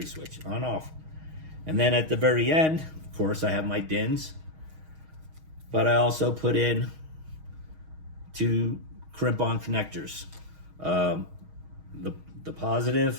switch, on off. And then at the very end, of course, I have my DINS, but I also put in 2 crimp-on connectors. The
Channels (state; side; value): late; left; 6.4 ms